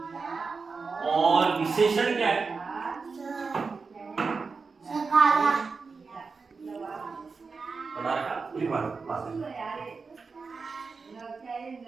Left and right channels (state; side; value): quieter; left; 4.7 dB